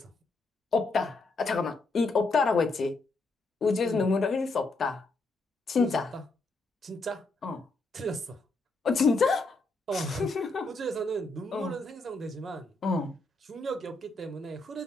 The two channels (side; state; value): right; quieter; 3.2 dB